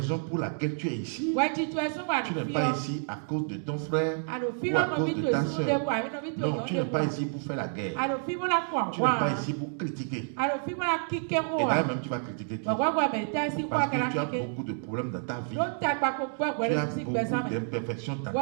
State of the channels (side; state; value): left; silent; digital silence